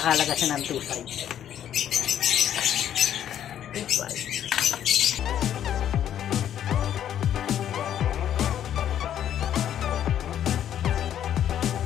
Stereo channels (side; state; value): right; quieter; 10.4 dB